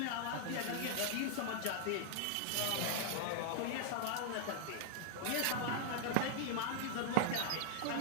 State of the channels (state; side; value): different; both; correlation -0.01